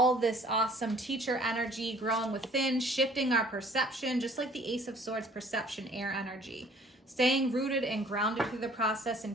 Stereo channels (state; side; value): normal; both; correlation 0.55